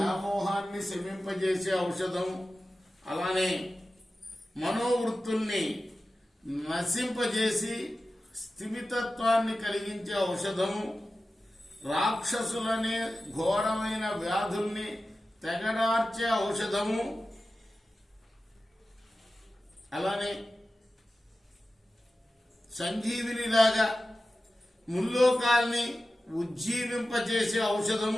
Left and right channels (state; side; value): normal; both; correlation 0.94